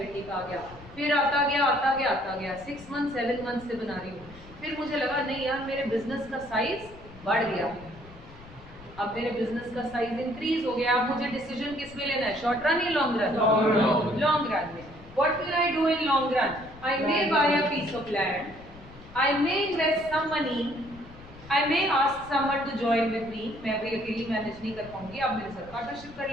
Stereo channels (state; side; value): noise; left; rumble, 19 dB below the sound